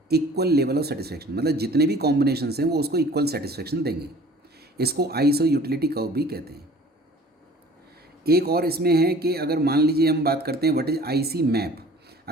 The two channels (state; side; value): normal; both; correlation 0.48